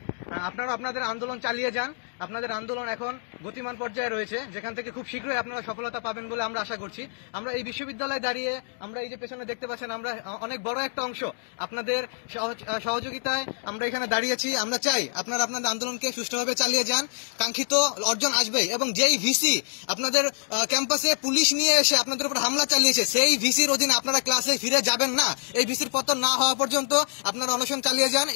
আপনারা আপনাদের আন্দোলন চালিয়ে যান। আপনাদের আন্দোলন এখন গতিমান পর্যায়ে রয়েছে, যেখান থেকে খুব শীঘ্রই আপনারা সফলতা পাবেন বলে আমরা আশা করছি। আমরা এই বিশ্ববিদ্যালয়ে দাঁড়িয়ে আমরা এই যে পেছনে দেখতে পাচ্ছেন, আমরা অনেক বড় একটা অংশ আপনাদের সহযোগিতায় আমরা এখানে দাঁড়িয়েছি। আমরা চাই আপনারা আপনাদের আন্দোলনকে সুষ্ঠুভাবে চালিয়ে যান। কাঙ্ক্ষিত অর্জন আসবেই, এবং যেই ভিসি আপনাদের ক্যাম্পাসে পুলিশ নিয়ে এসে আপনাদের উপর হামলা চালিয়েছে সেই ভিসির অধীনে আপনারা ক্লাসে ফিরে যাবেন না। এই ভিসির পতন না হওয়া পর্যন্ত আপনারা অনশন চালিয়ে যান।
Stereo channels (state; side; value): silent; right; 61 dB below the other